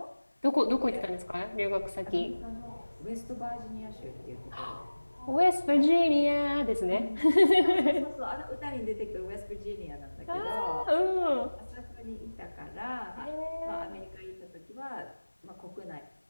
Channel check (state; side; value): inverted; both; correlation -1.00